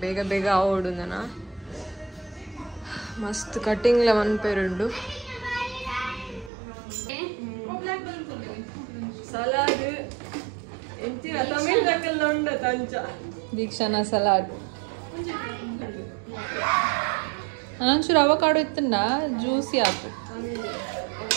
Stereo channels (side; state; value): left; drops out; at 6.5 s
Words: ಬೇಗ ಬೇಗ ಆವೋಡು ನನ ಮಸ್ತ್ ಕಟಿಂಗ್ಲ ಮನ್ಪೆರುಂಡು ಸಲಾಡ್ ಎಂಚಿನ ತಮಿಳ್ ದಕ್ಕಲ್ಲ ಉಂಡ ತಂಚ ದೀಕ್ಷಾನ ಸಲಾಡ್ ಒಂಚೂರು ಅವಕಾಡೋ ಇತ್ತಂಡ ಜ್ಯೂಸಿ ಆಯ್ತು